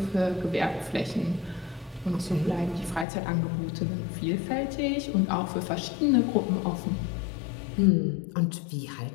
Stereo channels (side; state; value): right; drops out; at 3.1 s